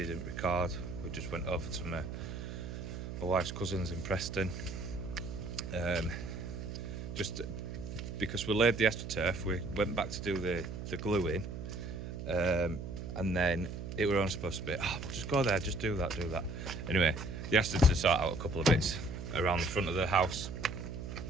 record. We just went over to my wife's cousins in Preston. Just because we laid the astroturf, we went back to do the gluing, and then it were only supposed to be, we'll just go there, just do that. Anyway, they asked us to sort out a couple of bits around the front of the house.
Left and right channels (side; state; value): right; noise; hum, 7 dB below the sound